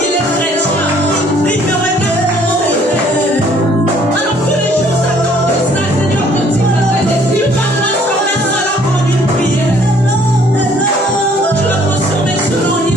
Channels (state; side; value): normal; both; correlation 0.60